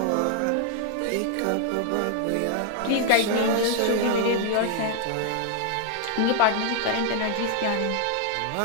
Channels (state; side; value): different; both; correlation 0.00